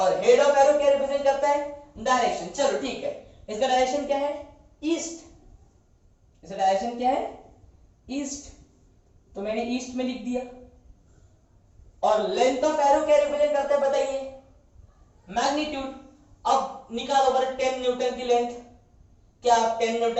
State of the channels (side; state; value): both; identical; correlation 1.00